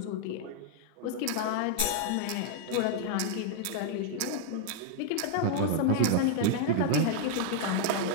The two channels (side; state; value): both; different; correlation 0.00